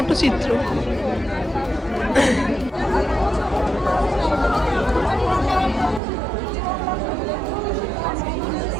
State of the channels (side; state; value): left; drops out; at 6.0 s